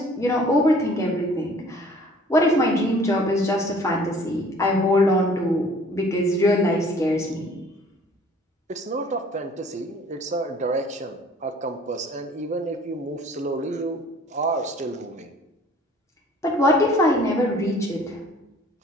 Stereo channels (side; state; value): both; normal; correlation 0.53